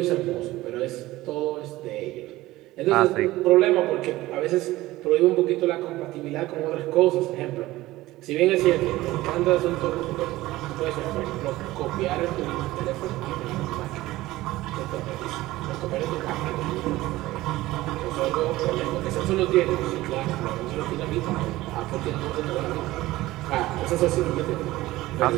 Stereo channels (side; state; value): left; quieter; 17.6 dB